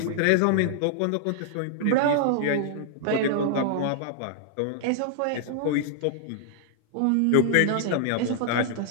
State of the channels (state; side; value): different; both; correlation -0.01